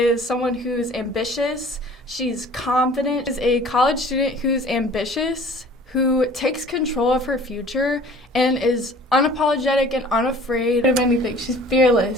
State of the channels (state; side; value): normal; both; correlation 0.48